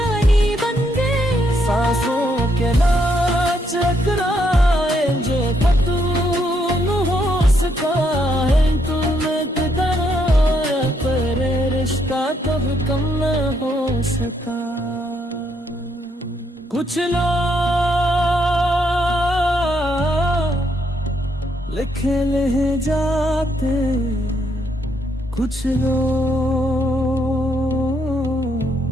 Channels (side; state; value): both; normal; correlation 0.75